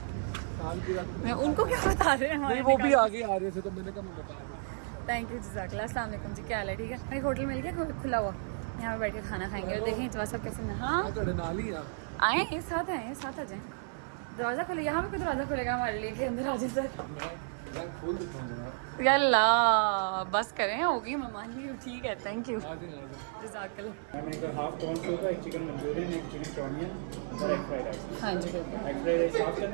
सालगिरह मैं उनको क्या बता रहे हैं नहीं, वो भी आगे आ रहे थे तो मैंने कहा मैं बता दूं। थैंक यू, जज़ाकल्लाह। अस्सलाम वालेकुम जी, क्या हाल है? ठीक है, एक होटल मिल गया खुला हुआ, यहाँ पे बैठ के खाना खाएंगे और देखें जवाब सब कैसे। हाँ मैं नाल ही आ आए, एक साथ आए, साथ आ जाए। दरवाजा खोले, यहाँ पे कोई दरवाजा खोलेगा हमारे लिए कि अंदर आ जाए सर? मैं खोल देता हूं जनाब। यल्ला बस करें, होगी मेहमान भी, ठीक है, थैंक यू, आ जाए। जज़ाकल्लाह। मैंने एक हाफ कॉर्न सूप, एक चिकन मंचूरियन, एक चिकन चाउमिन और एक फ्राइड राइस। हाँ जी बिल्कुल, एक फ्राइड राइस हाफ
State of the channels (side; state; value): left; silent; 56 dB below the other